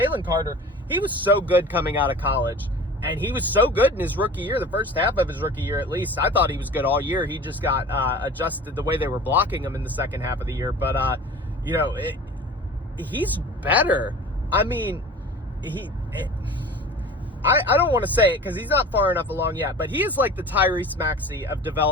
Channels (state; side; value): normal; both; correlation 0.40